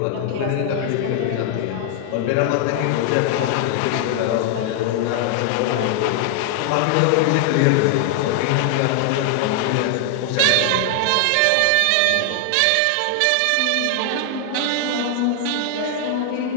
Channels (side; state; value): both; different; correlation 0.00